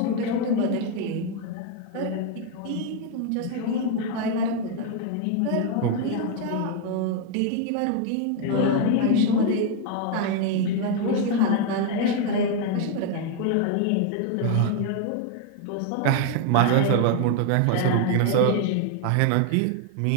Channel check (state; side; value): different; both; correlation 0.01